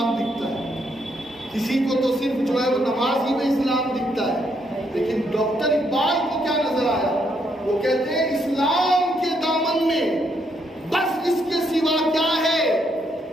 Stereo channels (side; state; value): both; normal; correlation 0.75